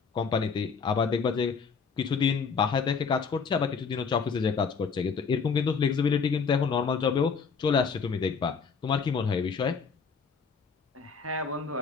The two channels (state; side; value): quieter; right; 5.6 dB